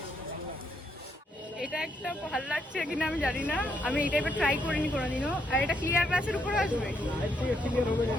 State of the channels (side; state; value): both; normal; correlation 0.76